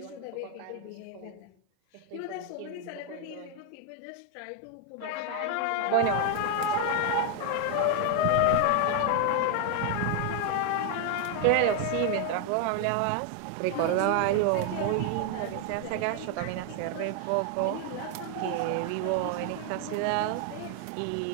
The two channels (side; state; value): both; different; correlation 0.01